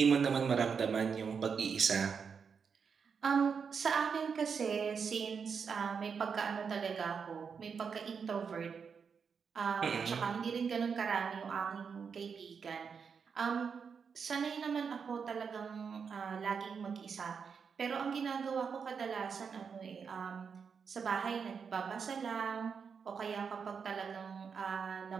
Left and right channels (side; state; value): left; quieter; 6.1 dB